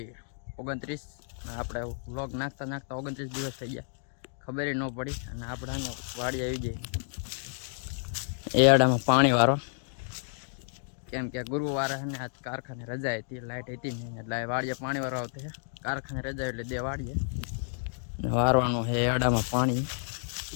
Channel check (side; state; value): right; silent; digital silence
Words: 29. આપણે વ્લોગ નાખતા 29 દિવસ થઈ ગયા, ખબર ન પડી. અને આપણે વાડી આવી ગઈ એડામાં પાણી વાળો, કેમ કે ગુરુવારે ને આજ કારખાને રજા હતી, લાઇટ હતી નહીં, એટલે વાડીએ પાણી વાળો આવતો છે. કારખાને રજા એટલે દે વાડીએ વારવાનું છે એડામાં પાણી.